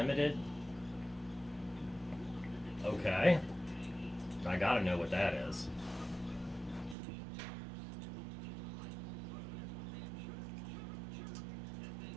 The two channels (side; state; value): left; drops out; at 7.0 s